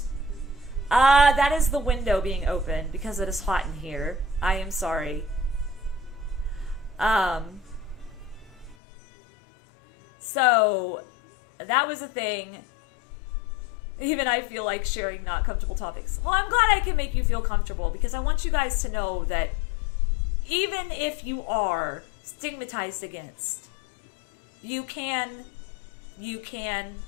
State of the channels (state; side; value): drops out; right; at 8.8 s